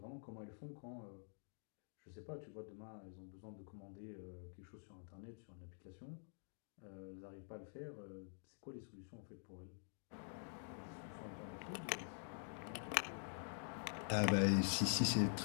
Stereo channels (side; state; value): right; silent; digital silence